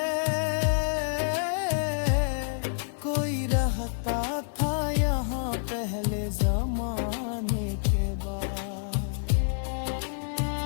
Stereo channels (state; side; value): silent; right; digital silence